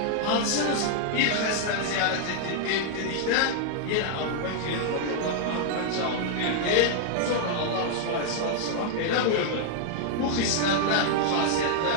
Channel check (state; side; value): different; both; correlation -0.01